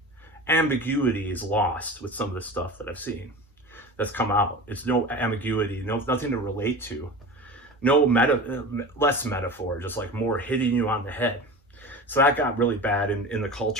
ambiguity is lost with some of the stuff that I've seen that's come out. It's no ambiguity, nothing to relate to, less metaphor, just like more hitting you on the head. So that got really bad in the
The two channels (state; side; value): normal; both; correlation 0.32